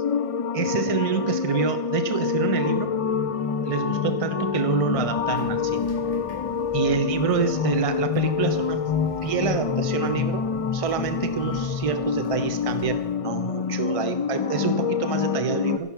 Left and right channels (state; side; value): late; right; 1.6 ms